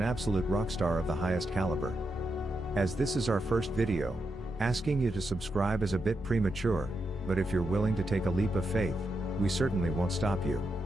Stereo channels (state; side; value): normal; both; correlation 0.84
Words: absolute rock star of the highest caliber. As this is our first video, asking you to subscribe is a bit premature, but if you're willing to take a leap of faith, we certainly won't stop you.